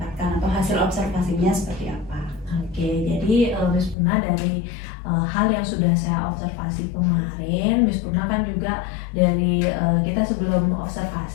atau hasil observasinya seperti apa. Oke, jadi Miss Purna dari hal yang sudah saya observasi kemarin, Miss Purna kan juga dari kita sebelum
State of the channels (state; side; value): drops out; right; at 4.0 s